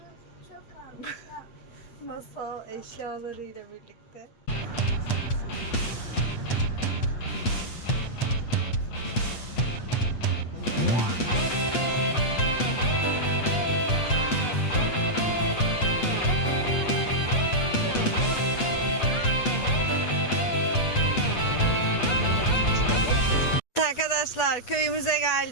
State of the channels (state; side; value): late; right; 8.2 ms